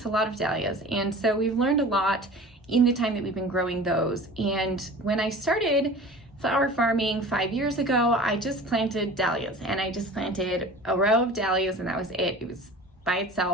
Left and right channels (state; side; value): normal; both; correlation 0.40